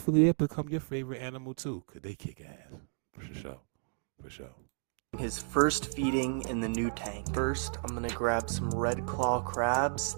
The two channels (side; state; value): left; silent; digital silence